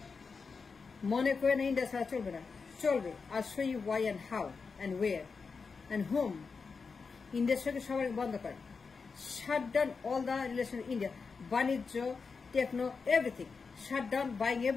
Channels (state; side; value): quieter; right; 5.0 dB